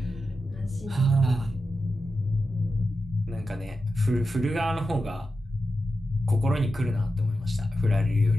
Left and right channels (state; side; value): normal; both; correlation 0.90